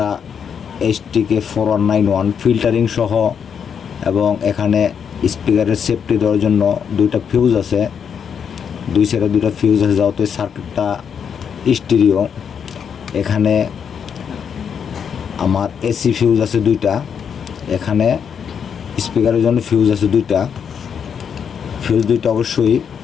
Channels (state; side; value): quieter; right; 7.4 dB